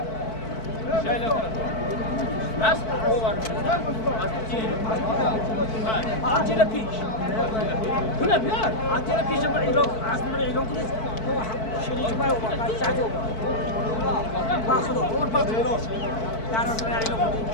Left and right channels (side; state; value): right; late; 4.5 ms